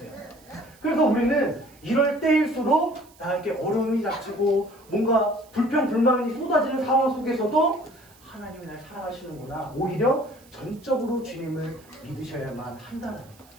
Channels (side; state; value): right; noise; hiss, 27 dB below the sound